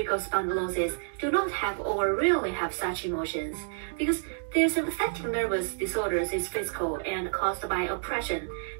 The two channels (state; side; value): silent; left; digital silence